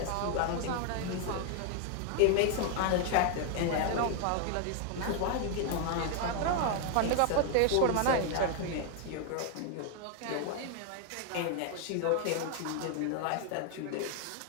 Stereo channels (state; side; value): different; both; correlation 0.00